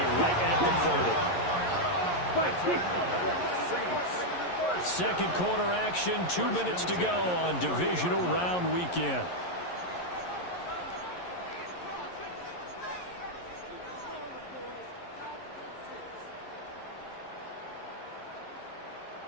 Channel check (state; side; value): late; right; 11 ms